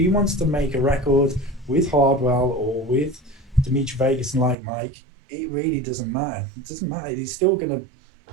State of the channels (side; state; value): left; drops out; at 4.5 s